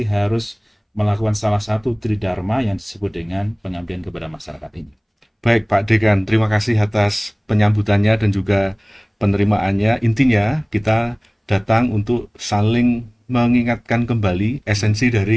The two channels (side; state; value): both; identical; correlation 1.00